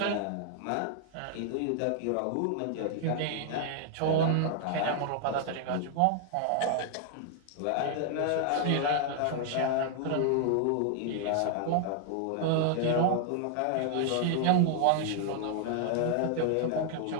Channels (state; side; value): different; both; correlation 0.00